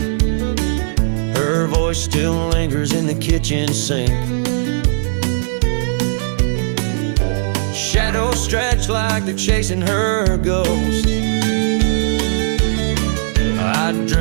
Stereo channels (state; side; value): silent; left; 60 dB below the other